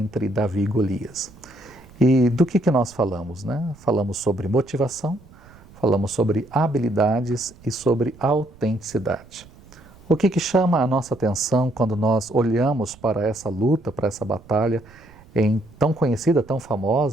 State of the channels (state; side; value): noise; right; rumble, 24 dB below the sound